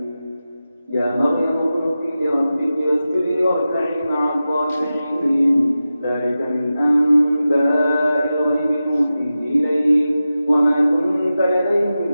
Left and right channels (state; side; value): inverted; both; correlation -0.93